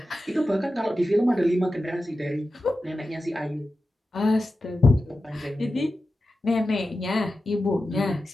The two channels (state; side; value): normal; both; correlation 0.92